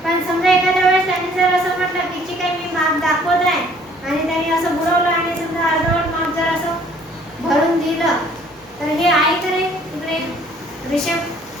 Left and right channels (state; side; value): normal; both; correlation 0.58